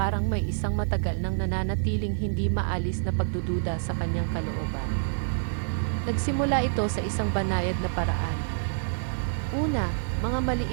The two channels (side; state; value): left; silent; 60 dB below the other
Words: may isang matagal nang nananatiling hindi maalis na pagdududa sa kanyang kalooban. Nagsimula ito sa isang banayad na paraan. Una, mga